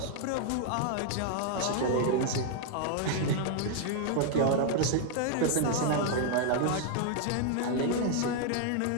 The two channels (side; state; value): both; different; correlation 0.00